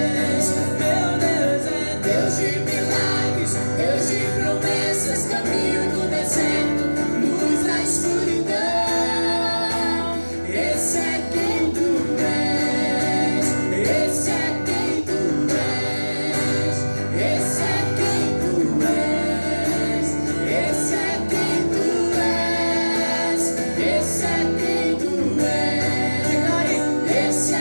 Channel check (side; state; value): both; inverted; correlation -1.00